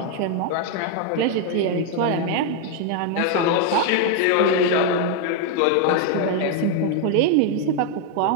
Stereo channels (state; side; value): different; both; correlation 0.01